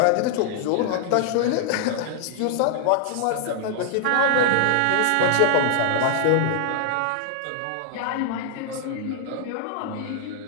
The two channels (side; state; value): both; different; correlation 0.00